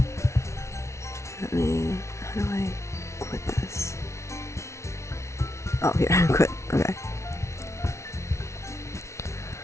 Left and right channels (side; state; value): right; late; 0.13 ms